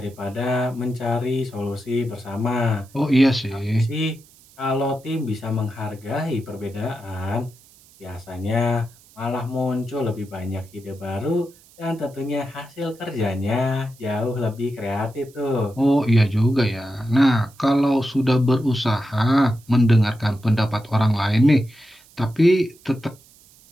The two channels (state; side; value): noise; right; hiss, 26 dB below the sound